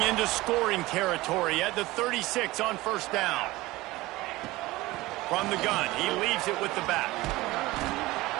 into scoring territory at the 36 on first down. From the gun, he leaves it with the back.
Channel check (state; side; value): quieter; left; 19.4 dB